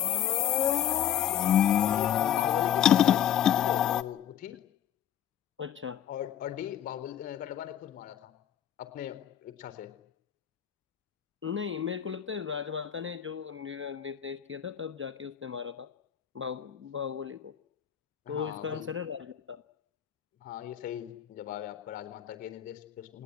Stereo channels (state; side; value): quieter; right; 9.9 dB